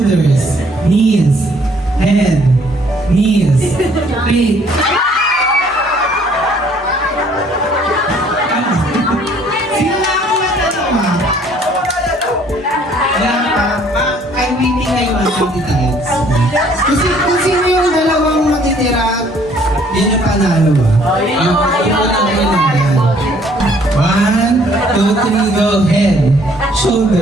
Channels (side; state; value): both; normal; correlation 0.60